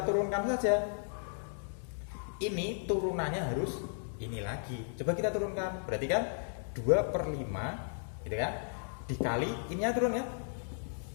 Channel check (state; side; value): silent; right; digital silence